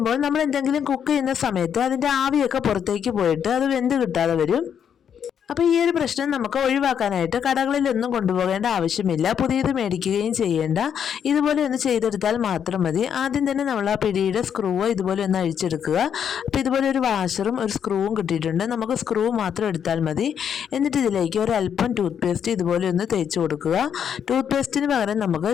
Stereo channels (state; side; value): quieter; right; 8.2 dB